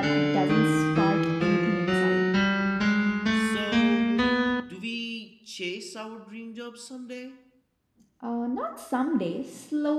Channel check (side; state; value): both; identical; correlation 1.00